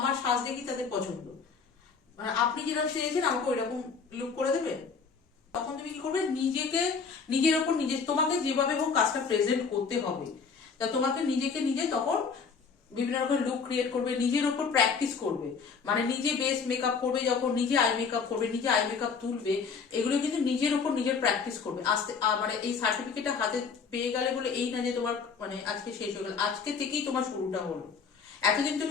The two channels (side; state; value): right; quieter; 5.5 dB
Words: সাজ দেখি তাদের পছন্দ, মানে আপনি যেরকম সেজেছেন আমাকে ওই রকম লুক করে দেবেন। তখন তুমি কি করবে, নিজেকে নিজের ওপর তোমাকে যেভাবে হোক কাজটা প্রেজেন্ট করতে হবে। তা তোমাকে নিজেকে নিজে তখন বিভিন্ন রকম লুক ক্রিয়েট করবে, নিজের ওপর প্র্যাকটিস করবে। মানে নিজে বেস মেকআপ করবে, যখন নিজে আই মেকআপ করবে, নিজে আই মেকআপ তুলবে, এগুলো কিন্তু নিজের ওপর নিজের প্র্যাকটিস করবে। আস্তে মানে এই সার্টিফিকেটটা হাতে পেয়ে গেলে বলে এই না যে তোমার মানে আজকে শেষ হয়ে গেল, আজকে থেকেই তোমার শুরুটা হলো। এতদিন